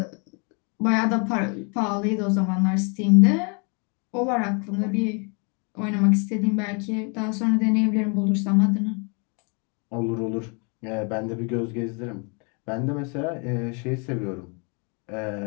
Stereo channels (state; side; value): quieter; right; 34.8 dB